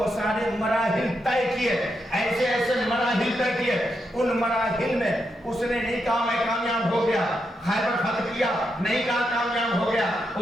سارے مراحل طے کیے، ایسے ایسے مراحل طے کیے. ان مراحل میں اس نے نہیں کہا میں کامیاب ہو گیا، خیبر فتح کیا نہیں کہا کامیاب ہو گیا،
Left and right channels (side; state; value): both; normal; correlation 0.83